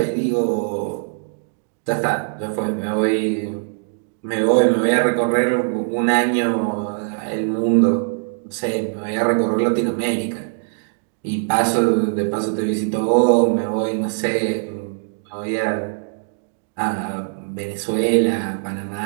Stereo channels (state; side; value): silent; left; digital silence